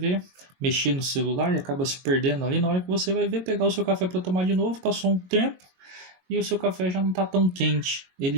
mexer no celular e acaba se perdendo ali. Na hora que você vai ver, pegar o seu café para tomar de novo, passou um tempo e o seu café já não está tão quente,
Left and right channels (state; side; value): late; left; 22 ms